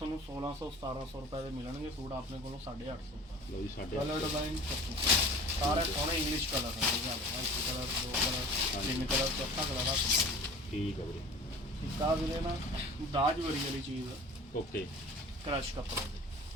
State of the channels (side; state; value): both; normal; correlation 0.42